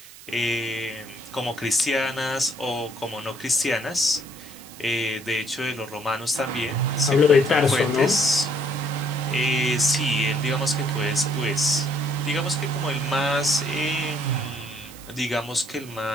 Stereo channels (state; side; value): noise; right; hiss, 18 dB below the sound